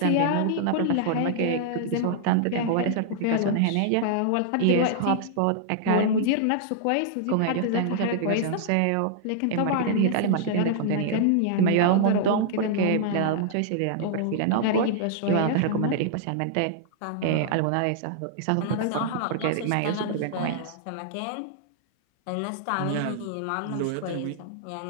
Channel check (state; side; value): different; both; correlation -0.01